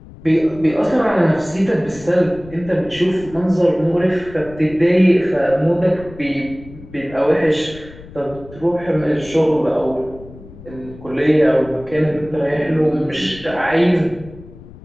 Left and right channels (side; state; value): left; noise; rumble, 18 dB below the sound